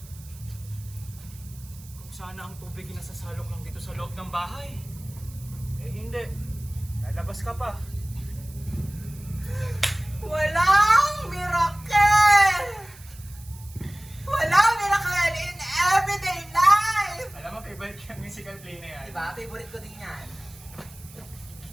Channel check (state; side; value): noise; right; hiss, 21 dB below the sound